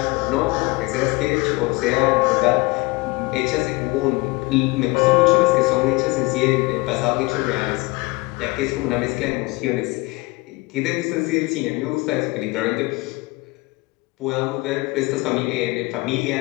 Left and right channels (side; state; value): right; quieter; 23.8 dB